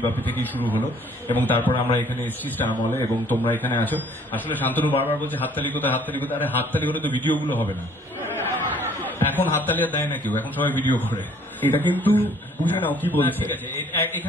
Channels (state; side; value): normal; both; correlation 0.58